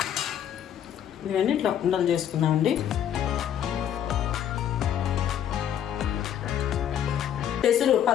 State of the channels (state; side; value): quieter; right; 9.9 dB